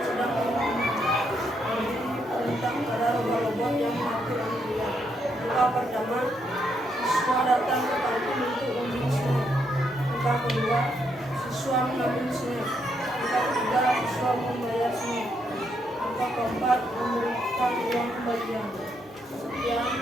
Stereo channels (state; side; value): normal; both; correlation 0.76